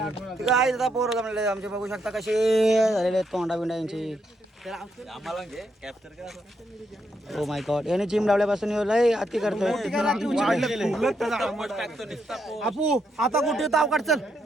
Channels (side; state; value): both; normal; correlation 0.78